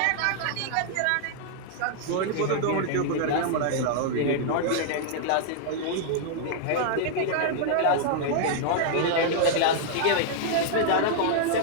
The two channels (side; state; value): both; different; correlation -0.01